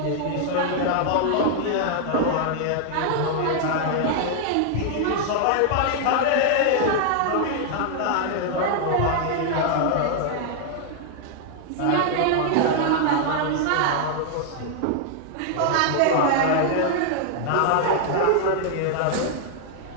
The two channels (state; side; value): different; both; correlation 0.00